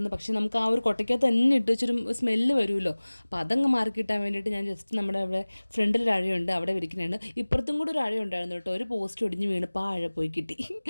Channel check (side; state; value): both; inverted; correlation -1.00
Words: പക്ഷേ നമുക്ക് ആ ഒരു കൊട്ടയ്ക്കകത്ത് തന്നെ ഇട്ട് വെച്ചൊരു സ്മെല്ല് വരുമല്ലോ. അപ്പോൾ അതങ്ങ് മാറി കിട്ടാൻ വേണ്ടിയിട്ട് ഞാൻ ജസ്റ്റ് നമ്മുടെ അവിടെ ഫ്രണ്ടിലൊരു അഴയുണ്ട്, അവിടെ വിരിക്കുന്നുണ്ട്. ഇപ്പുറത്തും കൂടെ ഒരു അഴയുണ്ടായിരുന്നു കേട്ടോ. ഒരു പോസ്റ്റ് ഒടിഞ്ഞ് വീണപ്പോൾ ആ അഴ പോയി കിട്ടി.